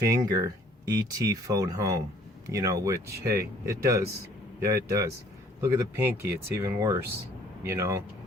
ET phone home. You know, which, hey, it does. Yeah, it does. Look at the pinky, it's even worse, you know.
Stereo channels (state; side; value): normal; both; correlation 0.58